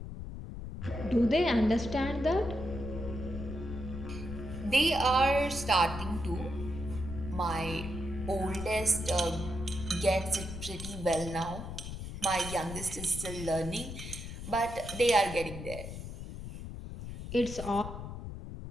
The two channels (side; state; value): left; noise; rumble, 8 dB below the sound